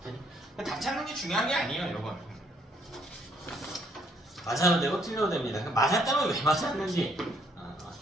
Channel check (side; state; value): both; normal; correlation 0.67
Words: 되니? 답 찾는 게 중요한 게 아니에요, 요건. 맞아도 되고 틀려도 됩니다. 맞았다면 왜 맞았는지,